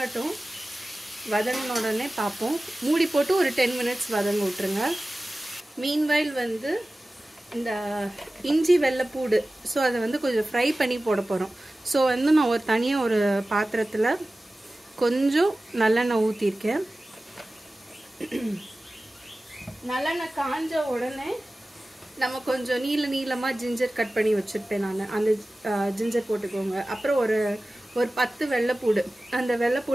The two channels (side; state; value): both; normal; correlation 0.96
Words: வதங்கின உடனே பார்ப்போம். மூடி போட்டு ஒரு 10 minutes வதங்க விட்டுருங்க. மீன்வைல் வந்து இந்த இஞ்சி வெள்ளைப்பூடு, ஸோ அதை வந்து கொஞ்சம் ஃப்ரை பண்ணி போட போகிறோம். ஸோ வந்து நான் தனியாக ஒரு பாத்திரத்தில் கொஞ்சம் நல்லெண்ணெய் ஊற்றிருக்கேன். நல்லெண்ணெய் காஞ்ச உடனே நம்ம கொஞ்சம் நீளமாக ஜிஞ்சர் கட் பண்ணி வச்சுருப்பேன் நான். அந்த ஜிஞ்சர் போட்டுக்கோங்க. அப்புறம் ஒரு 10 வெள்ளைப்பூடு, அந்த